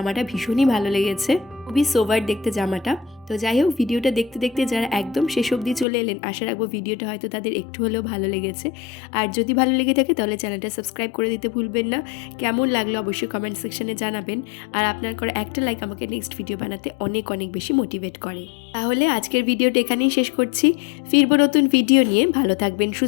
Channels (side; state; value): right; drops out; at 5.9 s